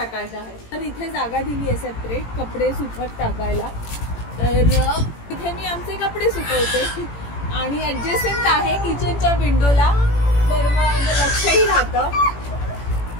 आहे. तर इथे जागा दिली आहे सेपरेट कपडे सुकत टाकायला. तर इथे मी आमचे कपडे सुकवते आणि ऍडजस्टमेंट आहे किचनच्या विंडोला, तर मग लक्षही राहतं.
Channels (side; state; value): right; late; 18 ms